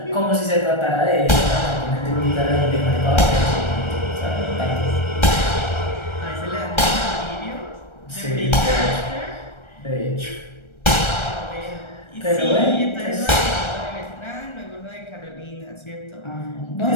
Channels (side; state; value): right; late; 1.3 ms